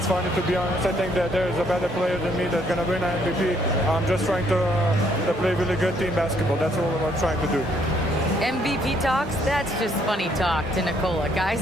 funny, to be honest. I think that there's a better player than me that's going to win an MVP. I'm just trying to play really good team basketball. That's all I'm trying to do. MVP talks? That's just funny talk to Nicola, guys.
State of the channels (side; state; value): both; normal; correlation 0.68